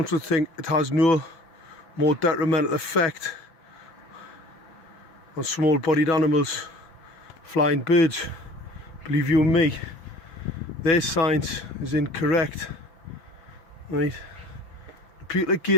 think it has no more detrimental effect on small bodied animals, flying birds. Believe you me, their science is incorrect. Right, the people at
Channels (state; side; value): late; right; 6.1 ms